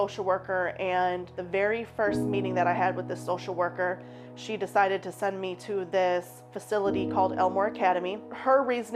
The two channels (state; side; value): identical; both; correlation 1.00